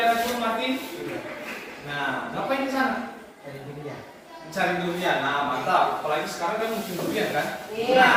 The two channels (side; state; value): both; identical; correlation 1.00